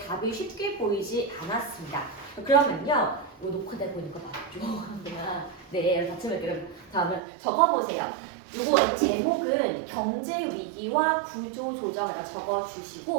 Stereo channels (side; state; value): left; drops out; at 7.2 s